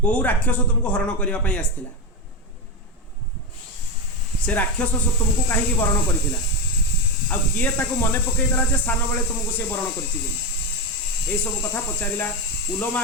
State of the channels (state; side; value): normal; both; correlation 0.13